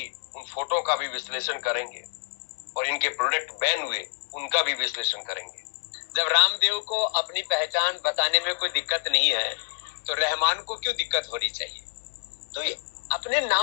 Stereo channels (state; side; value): silent; right; 60 dB below the other